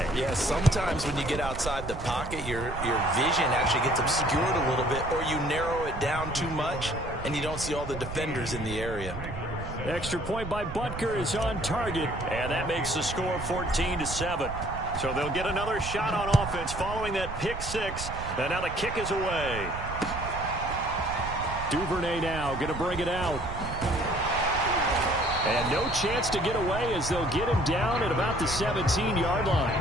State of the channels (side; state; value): right; noise; rumble, 9 dB below the sound